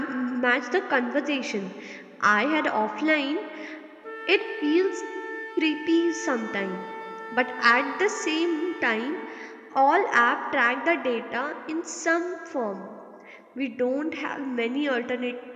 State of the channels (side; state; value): both; identical; correlation 1.00